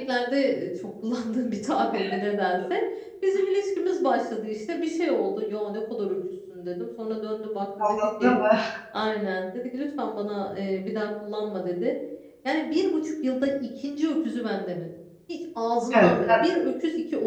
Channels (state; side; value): identical; both; correlation 1.00